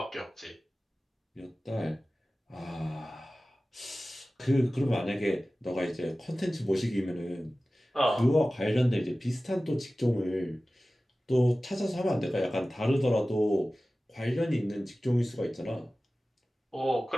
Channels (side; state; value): both; normal; correlation 0.96